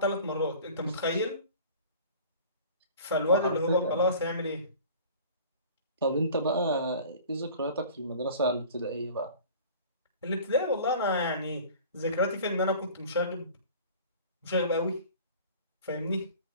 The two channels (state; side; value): inverted; both; correlation -0.44